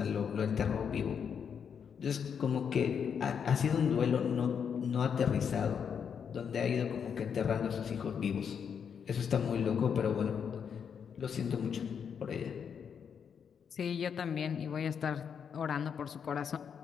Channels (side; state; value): right; quieter; 7.2 dB